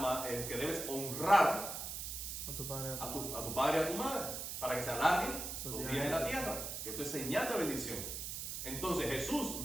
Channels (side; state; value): right; noise; hiss, 5 dB below the sound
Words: que debes honrar A tu padre. a tu padre y a tu madre para que se alarguen los días en la tierra. Que esto es señal de bendición. Entonces Jesús